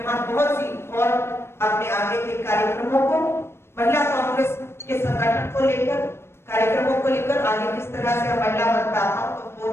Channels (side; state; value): right; late; 0.12 ms